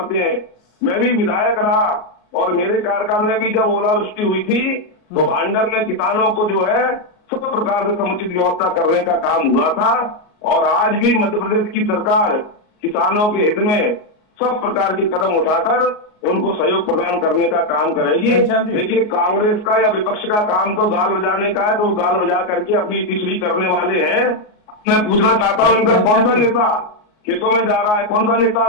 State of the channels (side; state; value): right; late; 38 ms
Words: हैं। मैं भी विधायक रहा और मेरे कार्यकाल में भी जब ओलावृष्टि हुई थी तो भांडर में किसानों को जो है सब प्रकार से समुचित व्यवस्था करने का काम हुआ था। और आज भी मध्य प्रदेश की सरकार किसानों के हित में सब प्रकार के कदम उठाकर उनको सहयोग प्रदान करने का काम करेगी। देखिए, कांग्रेस का या विपक्ष का काम तो गाल बजाने का है, तो वो गाल बजा करके अपनी पिछली करने वाले हैं। मैं पूछना चाहता हूँ, इनका कौन सा नेता खेतों में जा रहा है, कौन सा नेता